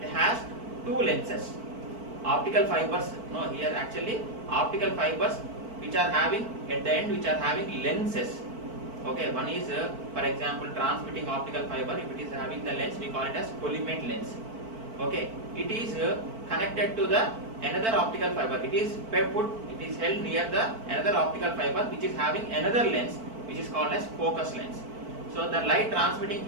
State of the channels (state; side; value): late; left; 4.5 ms